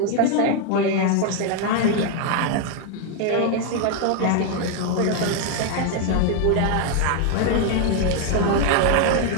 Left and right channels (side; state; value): both; different; correlation 0.01